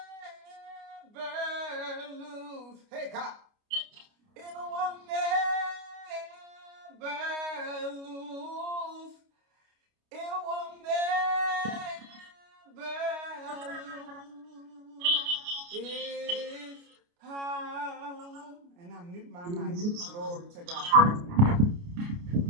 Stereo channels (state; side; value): late; left; 29 ms